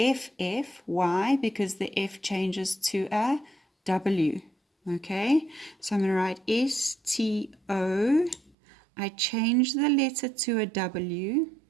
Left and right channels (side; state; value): left; drops out; at 8.5 s